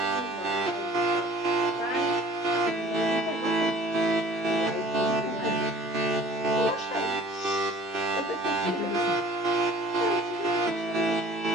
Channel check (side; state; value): both; normal; correlation 0.49